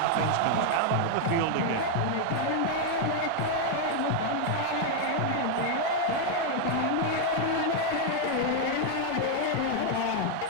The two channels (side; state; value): both; different; correlation 0.00